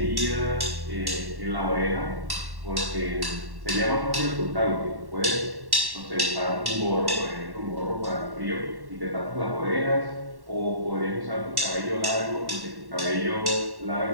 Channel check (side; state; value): left; late; 1.1 ms